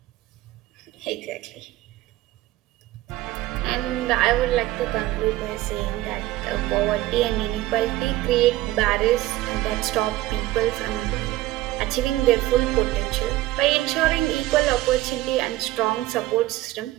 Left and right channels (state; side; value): quieter; left; 16.6 dB